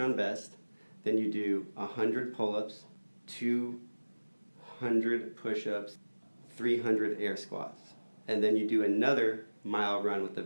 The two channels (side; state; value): both; inverted; correlation -1.00